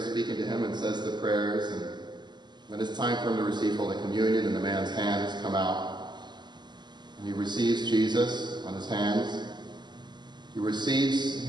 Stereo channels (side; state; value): left; late; 0.21 ms